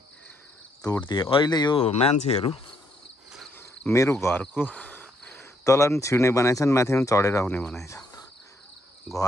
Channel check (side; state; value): both; normal; correlation 0.72